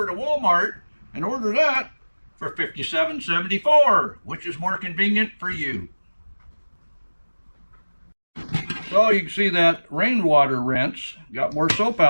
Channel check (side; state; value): both; inverted; correlation -1.00